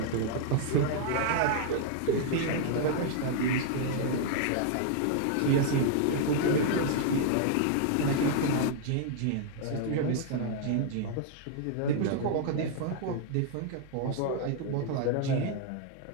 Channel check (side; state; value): both; different; correlation -0.01